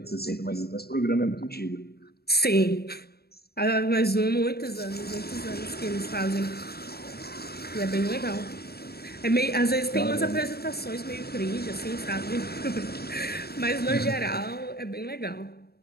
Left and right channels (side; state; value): right; late; 0.46 ms